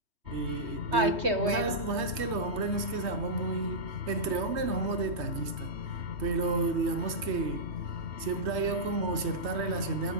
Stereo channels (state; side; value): late; left; 3.2 ms